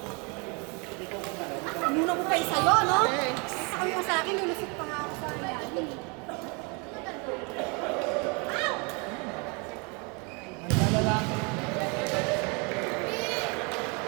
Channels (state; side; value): quieter; left; 31.9 dB